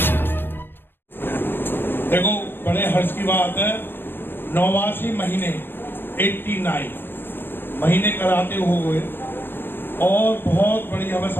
देखो, बड़े हर्ष की बात है, 89 महीने 89 महीने कराते हुए और बहुत बड़ी हमें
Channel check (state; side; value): late; right; 0.10 ms